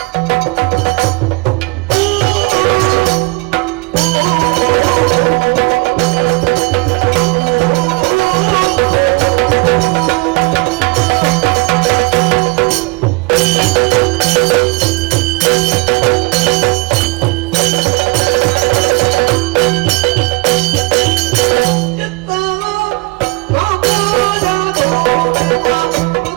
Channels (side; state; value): left; quieter; 26.7 dB